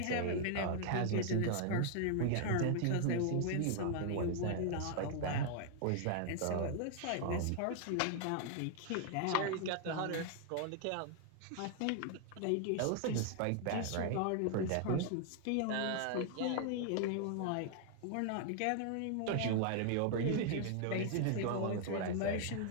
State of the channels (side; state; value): both; different; correlation 0.00